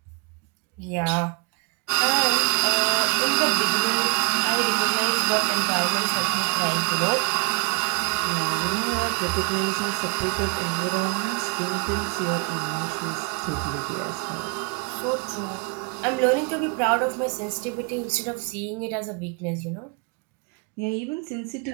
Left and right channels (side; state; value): left; quieter; 28.7 dB